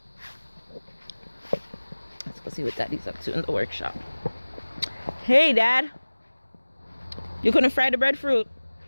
go see what Daddy's up to in the workshop. Hey, Dad. You couldn't fry the breadfruit?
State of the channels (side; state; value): both; inverted; correlation -1.00